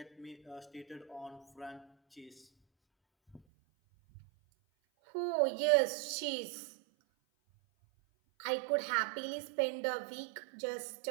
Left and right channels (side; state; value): left; drops out; at 3.4 s